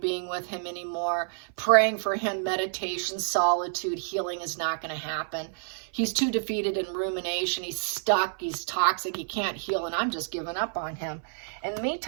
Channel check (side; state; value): left; silent; 58 dB below the other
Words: being with him anymore. Praying for him, meditation, solitude, healing is not going to happen. He's too defeated in rumination. He's stuck. He's toxic. He can't heal, and I'm just giving up on him. In the